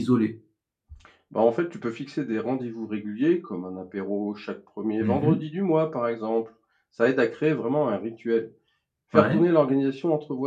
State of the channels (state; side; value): identical; both; correlation 1.00